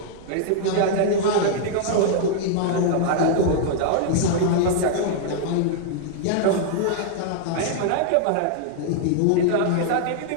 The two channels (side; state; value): both; different; correlation -0.01